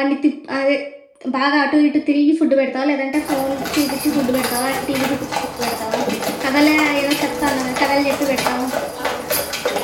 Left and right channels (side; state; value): both; identical; correlation 1.00